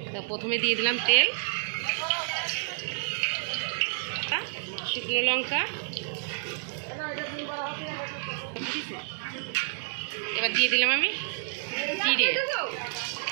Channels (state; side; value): silent; left; digital silence